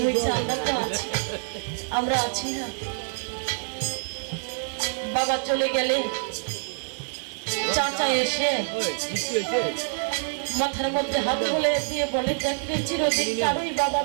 হয়েছে, আমরা তো আছি, আমরা আছি না। বাবা চলে গেলে চাচা এসে মাথার মধ্যে হাত বলে দিয়ে বলে দেখলে চিরদিন কারোই বাবা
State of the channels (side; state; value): left; silent; digital silence